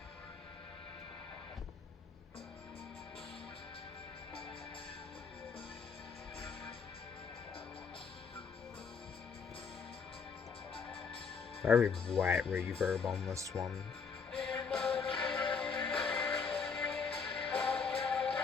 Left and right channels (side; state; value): right; quieter; 5.5 dB